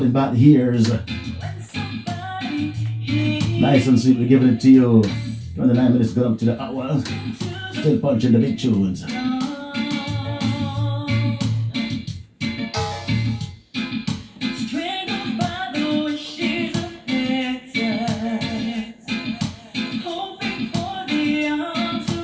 Back the Years." Nice and sweet, we're giving it to you. 29 minutes gone up to the hour. Still punching the big tunes.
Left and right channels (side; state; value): both; identical; correlation 1.00